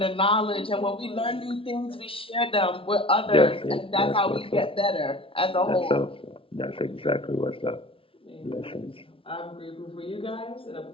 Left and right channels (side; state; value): right; late; 0.26 ms